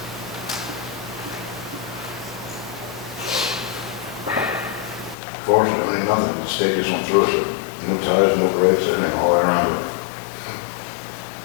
Fortunately, nothing, the state just went through it, new tires, new brakes, everything all the way around it.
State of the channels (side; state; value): right; drops out; at 5.2 s